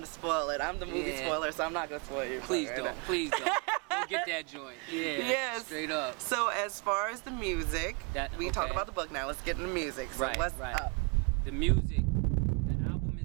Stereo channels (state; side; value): quieter; left; 31.8 dB